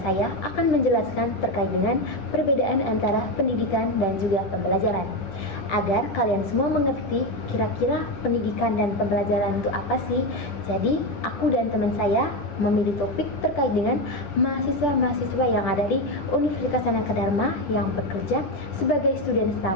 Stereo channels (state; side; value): late; right; 10 ms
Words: saya akan menjelaskan terkait dengan perbedaan antara pendidikan dan juga pembelajaran. Agar kalian semua mengerti kira-kira pendidikan dan pembelajaran itu apa sih. Jadi, aku dan teman saya memilih topik terkait dengan mahasiswa-mahasiswa yang ada di Universitas Sanaka Dharma yang bekerja sebagai student